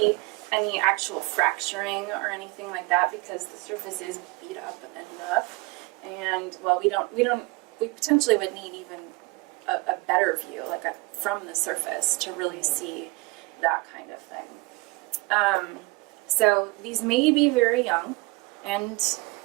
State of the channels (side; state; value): left; quieter; 25.5 dB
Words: any actual fracturing or anything like that because the surface is beat up enough. And well, we potentially would need even a better view, from the surface, to really see that kind of thing. So these may be very young, and